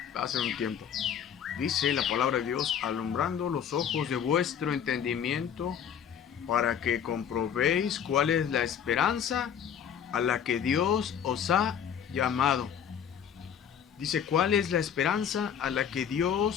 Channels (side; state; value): right; quieter; 8.4 dB